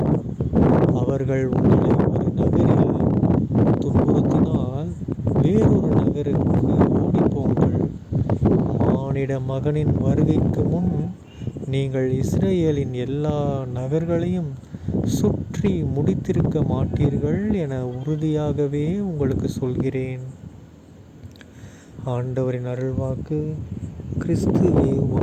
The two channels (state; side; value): identical; both; correlation 1.00